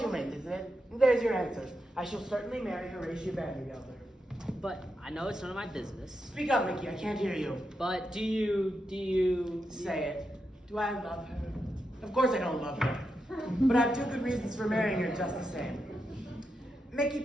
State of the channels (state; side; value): normal; both; correlation 0.86